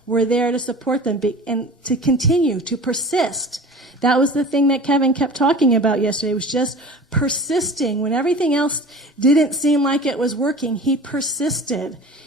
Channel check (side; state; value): both; normal; correlation 0.39